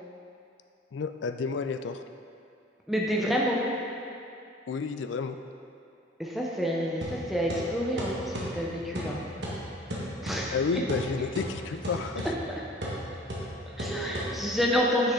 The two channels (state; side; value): normal; both; correlation 0.48